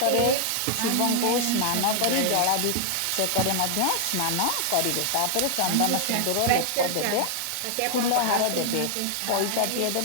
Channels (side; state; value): both; different; correlation -0.01